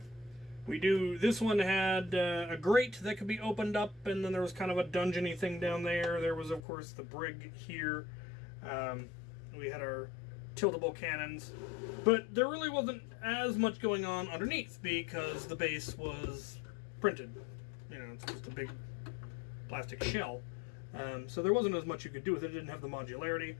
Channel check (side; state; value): right; drops out; at 6.6 s